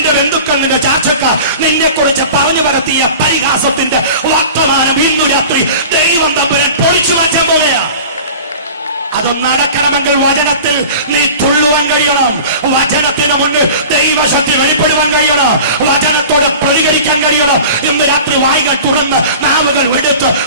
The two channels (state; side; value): inverted; both; correlation -0.39